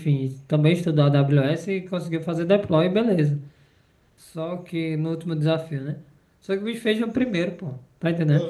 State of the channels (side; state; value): both; identical; correlation 1.00